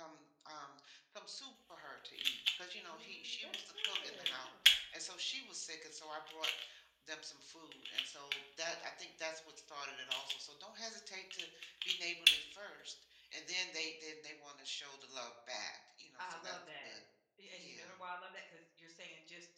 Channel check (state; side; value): identical; both; correlation 1.00